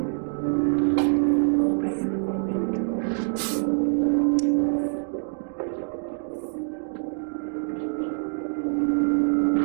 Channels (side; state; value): left; silent; digital silence